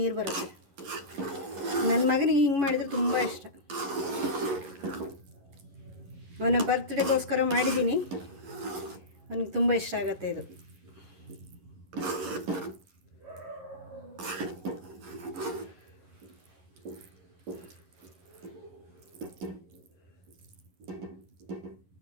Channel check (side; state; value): left; late; 11 ms